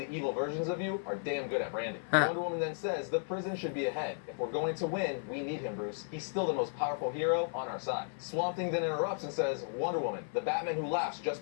evil versions of you are damn good at branding." Wonder Woman then says, "The prison should be ahead. If we're going to win, we need him, Bruce. He's still the most powerful hero on our side." Swamp Thing then interrupts and says, "Wonder Woman, the Batman Who Laughs just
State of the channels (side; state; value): right; silent; 55 dB below the other